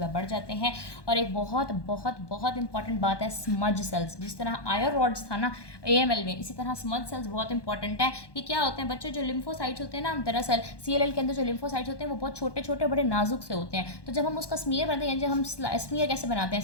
बढ़ जाते हैं। और एक बहुत बहुत बहुत इंपॉर्टेंट बात है स्मज सेल्स। जिस तरह आयर रॉड्स था ना AML में, इसी तरह स्मज सेल्स बहुत इंपॉर्टेंट है। ये क्या होते हैं बच्चों, जो लिम्फोसाइट्स होते हैं ना, दरअसल CLL के अंदर जो लिम्फोसाइट्स होते हैं वो बहुत छोटे छोटे बड़े नाजुक से होते हैं। तो जब हम उसका स्मीयर बनाते हैं, जब हम स्मीयर कैसे बनाते हैं,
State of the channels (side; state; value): right; late; 1.2 ms